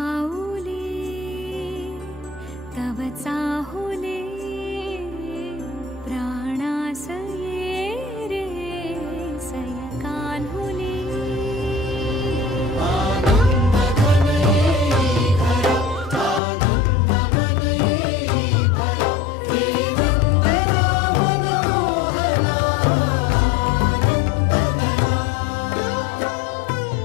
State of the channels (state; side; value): drops out; right; at 16.4 s